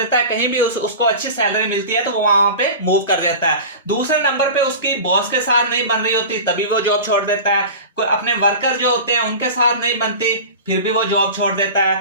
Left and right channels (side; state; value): both; inverted; correlation -0.33